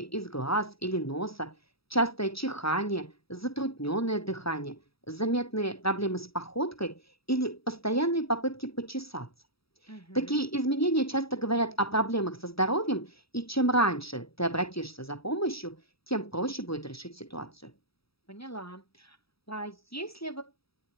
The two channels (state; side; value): late; right; 0.77 ms